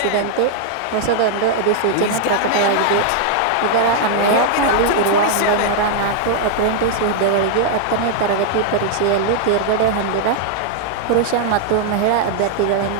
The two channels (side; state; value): both; different; correlation 0.00